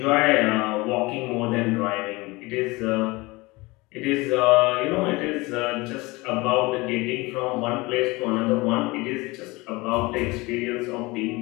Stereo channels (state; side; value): quieter; right; 23.1 dB